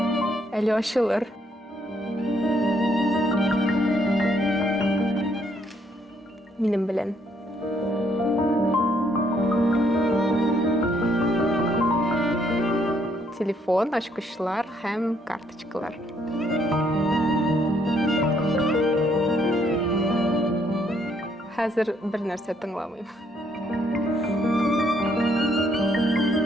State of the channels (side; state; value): both; normal; correlation 0.69